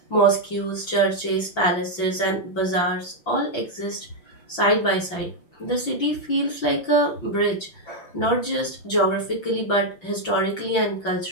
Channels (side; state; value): right; late; 5.9 ms